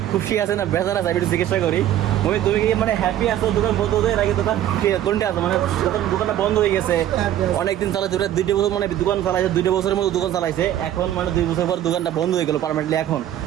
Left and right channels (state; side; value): quieter; left; 12.0 dB